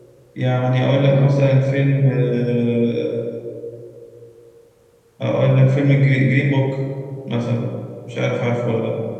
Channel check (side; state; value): both; identical; correlation 1.00